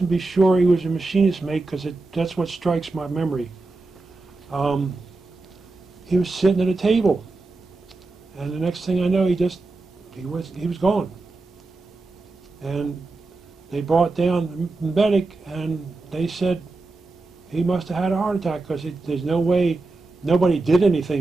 sure he was a machinist mate because that's what strikes my memory. He was sitting at a table, and the next thing I know, he was gone. And they brought down the medic, and they said he must have had a heart attack because there's no way nobody did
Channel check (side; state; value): left; quieter; 3.4 dB